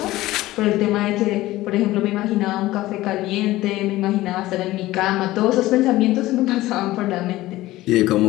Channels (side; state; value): right; quieter; 17.0 dB